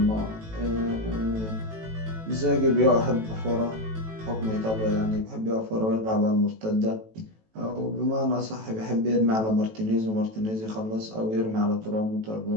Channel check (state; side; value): late; left; 18 ms